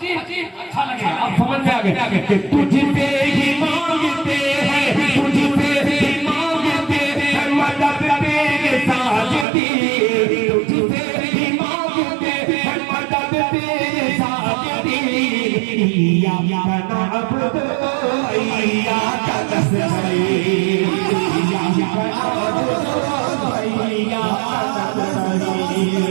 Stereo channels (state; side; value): drops out; left; at 9.5 s